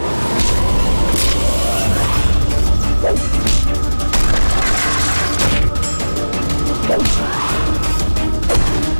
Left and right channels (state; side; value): inverted; both; correlation -1.00